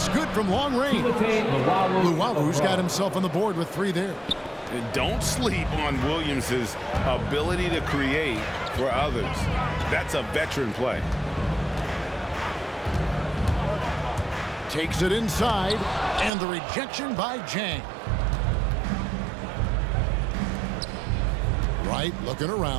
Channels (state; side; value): drops out; left; at 16.3 s